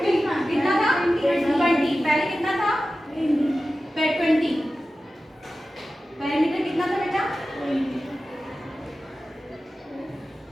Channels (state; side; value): normal; both; correlation 0.94